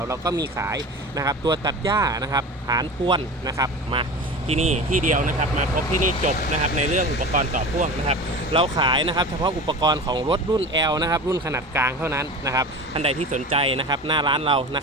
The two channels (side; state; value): both; normal; correlation 0.32